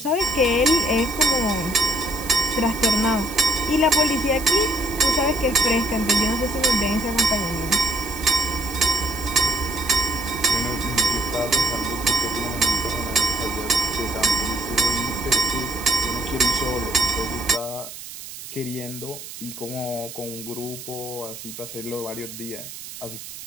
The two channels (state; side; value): noise; right; hiss, 12 dB below the sound